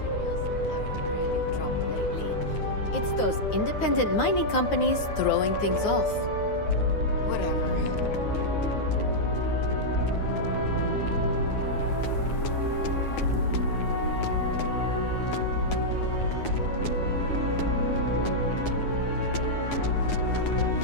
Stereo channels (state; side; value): late; right; 9.6 ms